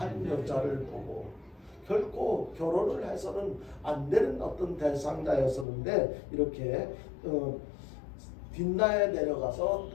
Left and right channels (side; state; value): right; drops out; at 5.7 s